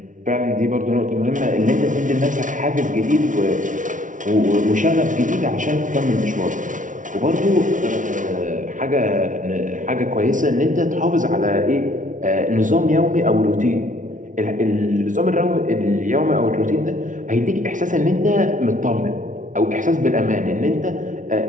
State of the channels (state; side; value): late; left; 0.37 ms